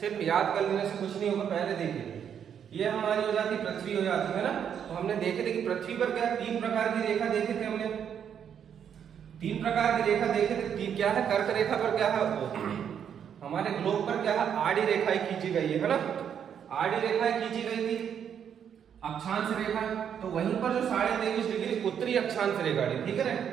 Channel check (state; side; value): quieter; left; 8.4 dB